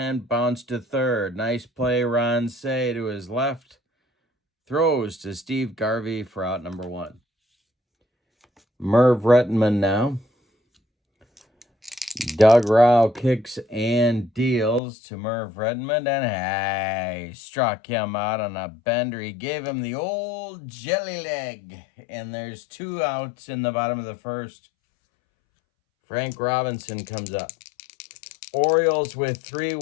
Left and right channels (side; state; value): right; drops out; at 14.8 s